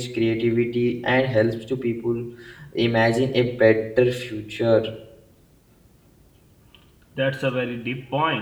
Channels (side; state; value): both; identical; correlation 1.00